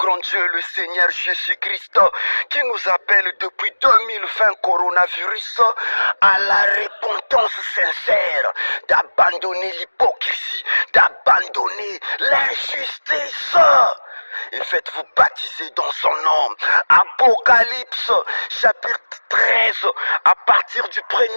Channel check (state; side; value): inverted; both; correlation -1.00